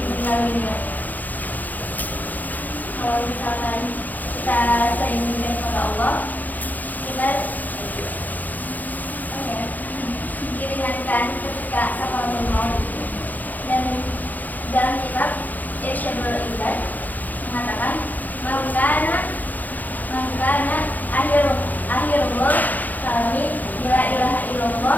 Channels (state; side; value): late; right; 0.082 ms